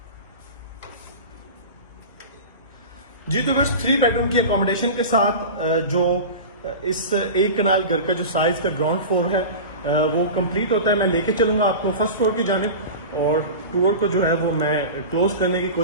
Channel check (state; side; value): inverted; both; correlation -0.30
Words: जी तो बस 3 बेडरूम की अकोमोडेशन के साथ जो इस एक कनाल घर का जो साइज का ग्राउंड फ्लोर है वो कंप्लीट होता है। मैं लेके चलूंगा आपको फर्स्ट फ्लोर की जानिब, और टूर को जो है वो मैं क्लोज करने की